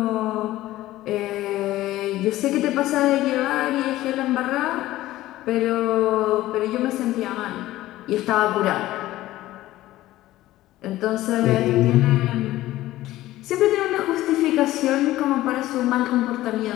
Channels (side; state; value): right; quieter; 15.8 dB